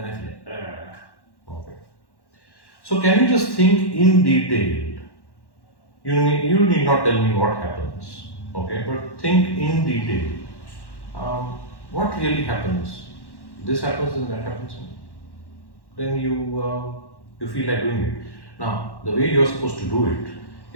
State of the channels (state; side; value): late; right; 1.1 ms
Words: I feel like, okay. So, can you just think in detail? You need not tell me what happens, okay, but think in detail. What really happens? This happens and that happens. Then you feel like doing it. Now, the way you're supposed to do